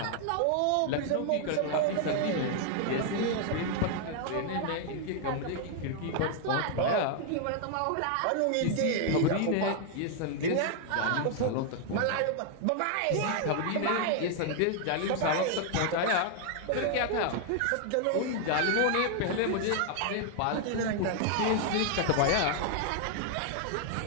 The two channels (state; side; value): different; both; correlation 0.00